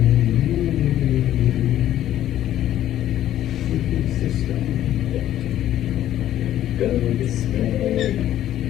System. Go display.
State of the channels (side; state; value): right; quieter; 12.3 dB